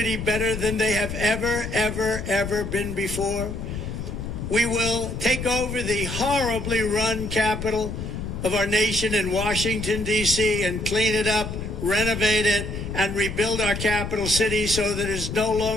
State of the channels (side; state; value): left; noise; rumble, 6 dB below the sound